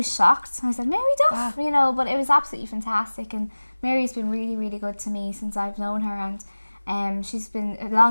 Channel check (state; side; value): inverted; both; correlation -1.00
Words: shocked. I said, Mary Duff, but it was absolutely fantastic. And Mary's been really, really good to me since I've known her, and she's been